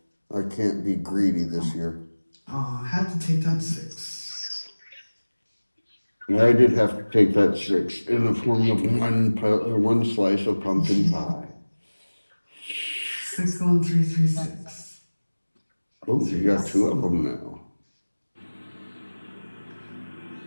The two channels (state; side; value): inverted; both; correlation -1.00